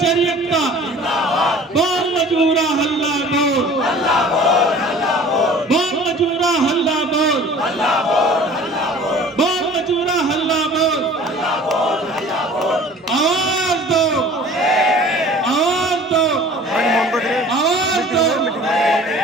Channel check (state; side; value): normal; both; correlation 0.46